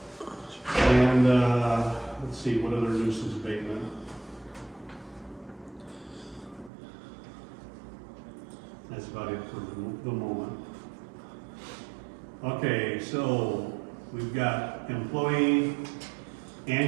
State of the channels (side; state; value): left; drops out; at 6.7 s